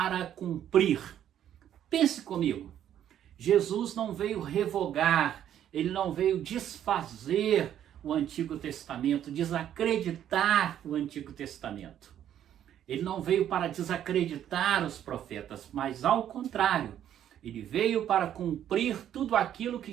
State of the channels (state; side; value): quieter; left; 10.6 dB